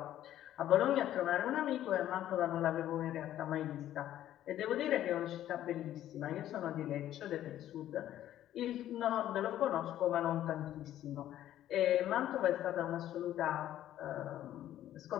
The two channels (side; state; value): right; quieter; 12.4 dB